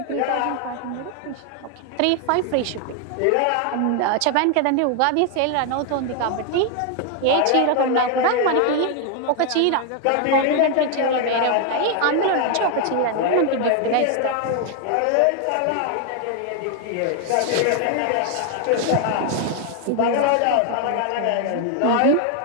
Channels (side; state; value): both; different; correlation 0.00